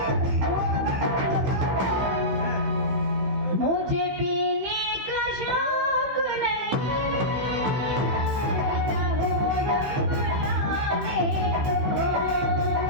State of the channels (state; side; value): late; left; 16 ms